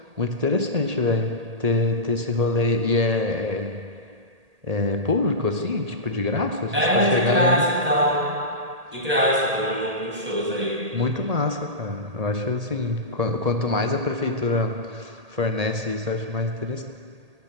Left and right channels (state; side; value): late; left; 1.8 ms